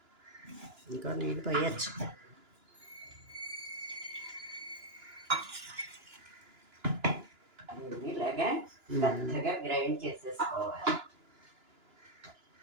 ఇంకో నీళ్ళు పోయచ్చు. ఇలాగా మెత్తగా గ్రైండ్ చేసేసుకోవాలి.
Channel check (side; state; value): left; late; 2.9 ms